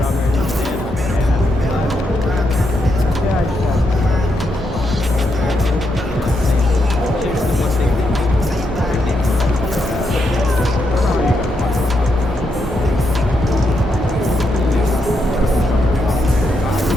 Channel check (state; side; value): normal; both; correlation 0.81